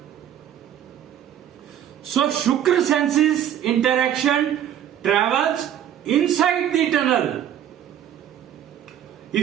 So Shukra senses interaction travels inside the tunnel.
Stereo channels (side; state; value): left; quieter; 10.4 dB